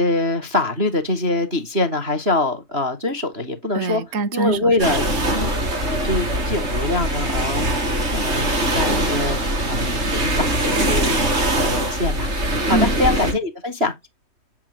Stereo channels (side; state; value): left; late; 3.1 ms